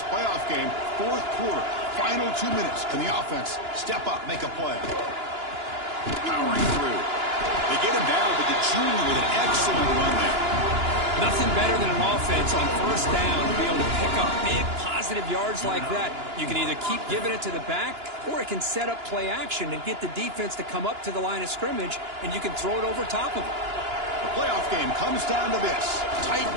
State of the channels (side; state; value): left; late; 2.9 ms